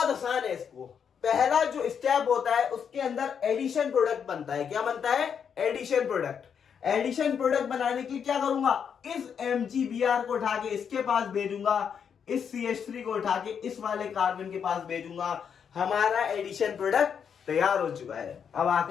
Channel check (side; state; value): right; quieter; 7.3 dB